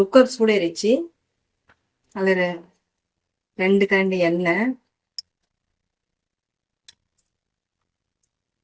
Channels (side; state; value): both; identical; correlation 1.00